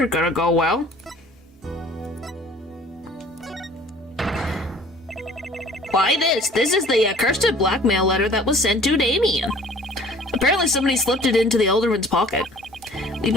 gonna go well. Why this? This is the accursed blackmail letter that was sent to Damien. Apparently somebody slipped it into the alderman's pocket. We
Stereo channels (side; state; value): both; normal; correlation 0.51